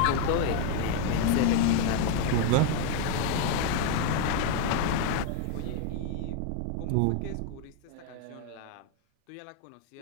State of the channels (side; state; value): both; different; correlation 0.01